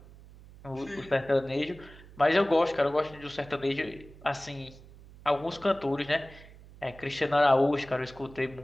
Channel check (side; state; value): right; noise; hum, 20 dB below the sound